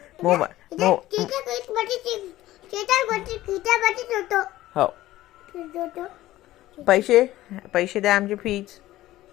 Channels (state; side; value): quieter; right; 15.7 dB